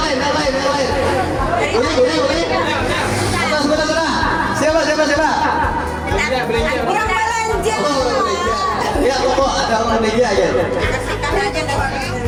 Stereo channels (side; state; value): both; identical; correlation 1.00